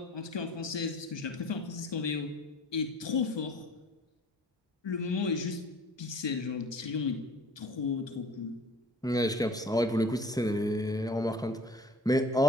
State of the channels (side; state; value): both; normal; correlation 0.46